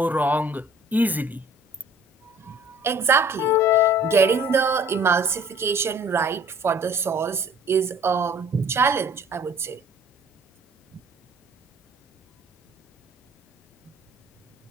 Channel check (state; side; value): normal; both; correlation 0.52